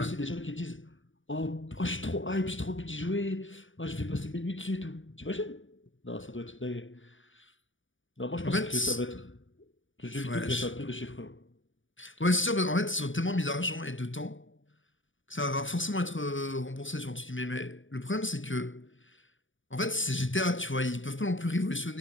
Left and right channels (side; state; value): right; late; 0.57 ms